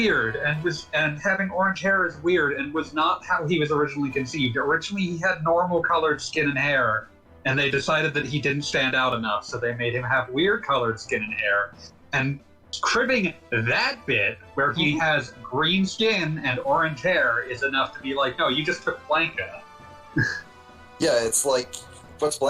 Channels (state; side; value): identical; both; correlation 1.00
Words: and having orange hair is weird, and was not how he was originally conceived. Originally, he had normal colored skin and hair, and they decided that he didn't stand out enough, so they made him have weird colored skin and hair. And cribbing that bit, where he has green skin and orange hair, is enough to be like, no, you just took Blanca. Yeah, it's like, what's